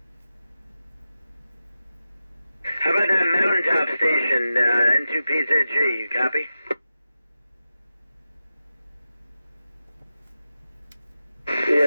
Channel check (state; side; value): inverted; both; correlation -0.92